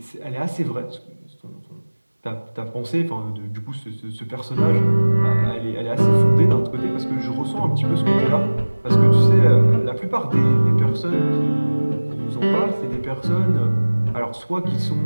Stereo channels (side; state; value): both; inverted; correlation -1.00